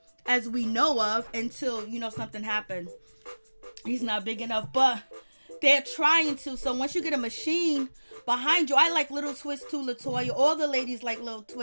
as we know of, until something happens. He's not big enough, but they're trying to. So once you get a machine behind you, I like Little Twist too, Latoya. All the ladies like Little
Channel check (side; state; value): both; inverted; correlation -1.00